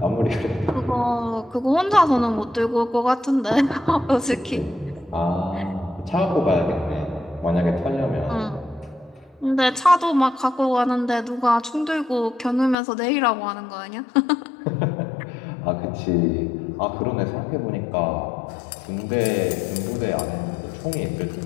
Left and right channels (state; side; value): drops out; right; at 12.8 s